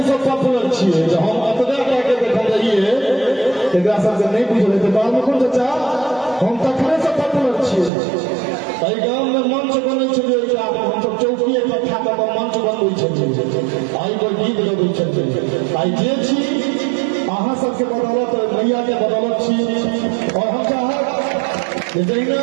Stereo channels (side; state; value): left; drops out; at 7.9 s